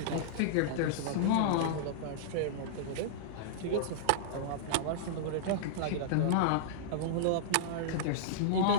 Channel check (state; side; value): different; both; correlation -0.02